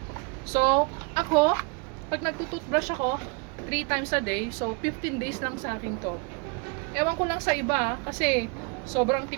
So, ako, pag nagtututbrush ako, 3 times a day, so 15 days lang sa akin to. Ewan ko lang sa iba, kasi sobrang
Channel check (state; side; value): quieter; left; 31.1 dB